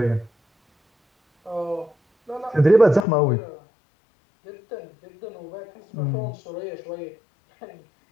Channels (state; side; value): drops out; right; at 3.1 s